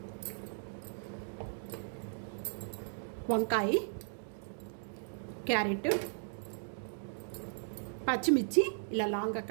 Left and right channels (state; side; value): silent; left; digital silence